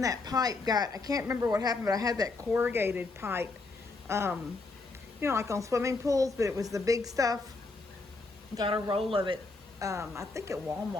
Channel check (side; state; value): right; quieter; 3.6 dB